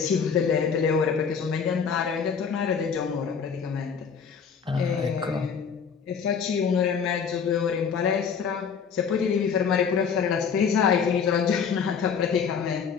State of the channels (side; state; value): right; quieter; 6.5 dB